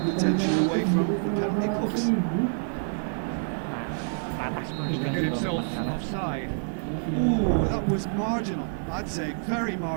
away from the penalty box. To get himself offside. Ooh, that was marginal. I'd say very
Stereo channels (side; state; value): left; silent; 60 dB below the other